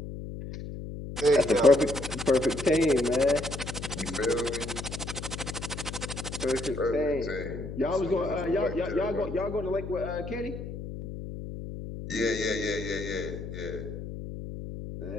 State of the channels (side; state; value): left; noise; hum, 8 dB below the sound